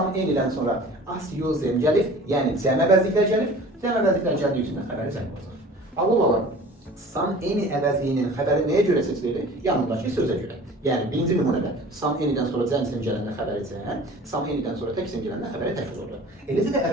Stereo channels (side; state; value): both; normal; correlation 0.43